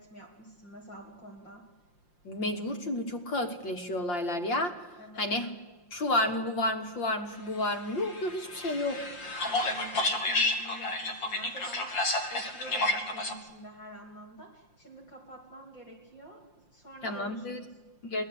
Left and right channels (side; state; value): right; late; 5.7 ms